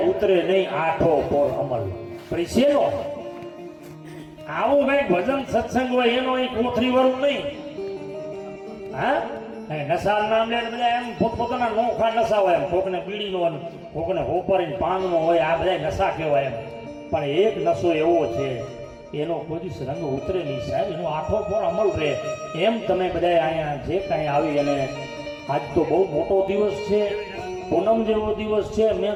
ઉતરે નહીં આઠો પોર અમલ. પરિસેનો આવું કઈ ભજન સત્સંગ હોય એનો એક કોથરી વાળું નહીં. નશા નામ લે બધા એમ પોતપોતાના નોખા નશા હોય એમ કોકને બીડીનો કોકને હોપરીને પાનનો હોય આ બધા નશા કહેવાય એમ પણ એક નશો એવો છે એનો કોઈ રંગ ઉતરે નહીં સાહેબ એનો આઠો પર અમલ રહે. એમ તમે બધા અહીંયા જે કાંઈ આવી અને આજ તો બહુ મોટો દિવસ છે પૂનમ જેવો દિવસ છે. મેં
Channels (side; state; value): both; identical; correlation 1.00